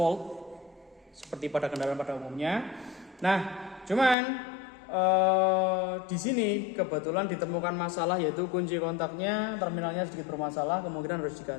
seperti pada kendaraan pada umumnya. Nah, cuman di sini kebetulan ditemukan masalah, yaitu kunci kontaknya, terminalnya sedikit bermasalah, kemungkinan harus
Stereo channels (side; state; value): right; drops out; at 4.2 s